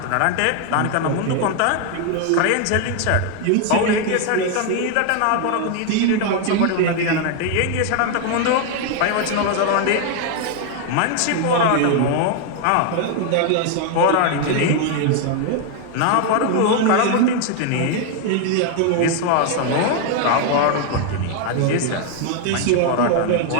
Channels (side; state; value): both; different; correlation 0.00